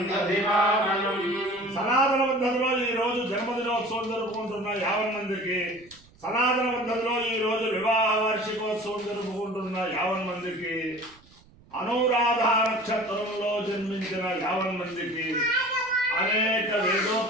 दधिवामनं। సనాతన పద్ధతిలో ఈ రోజు జన్మదినోత్సవం జరుపుకుంటున్న 50 మందికి, సనాతన పద్ధతిలో ఈ రోజు వివాహ వార్షికోత్సవం జరుపుకుంటున్న 50 మందికి, అనురాధ నక్షత్రంలో జన్మించిన 50 మందికి అనేక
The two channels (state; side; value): noise; right; rumble, 27 dB below the sound